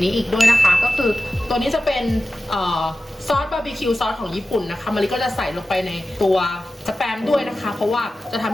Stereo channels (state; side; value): normal; both; correlation 0.94